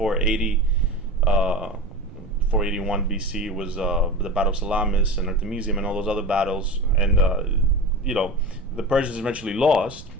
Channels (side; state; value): right; noise; rumble, 17 dB below the sound